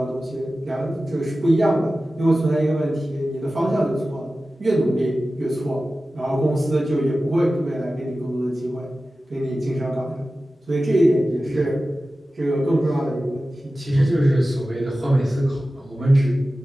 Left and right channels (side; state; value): both; normal; correlation 0.95